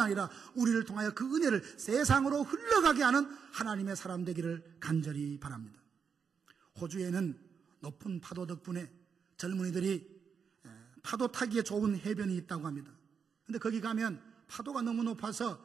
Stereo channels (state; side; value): quieter; left; 6.4 dB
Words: 아니라 우리를 통하여 그 은혜를 세상으로 흘러가게 하는 하나님의 사람 되기를 간절히 바랍니다. 호주에는 높은 파도 덕분에 젊은이들이 파도 타기에 좋은 해변이 있다고 합니다. 근데 거기 가면 파도가 너무 높아서